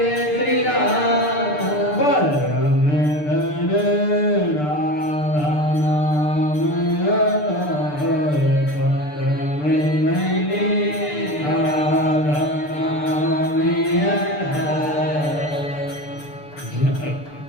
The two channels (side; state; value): right; late; 6.8 ms